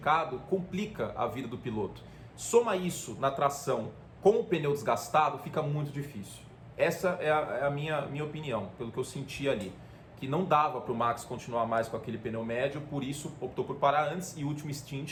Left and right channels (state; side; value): identical; both; correlation 1.00